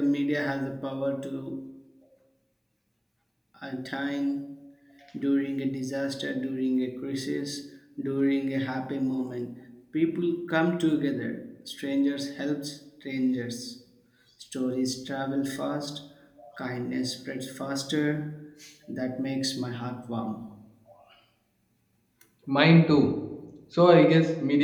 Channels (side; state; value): both; identical; correlation 1.00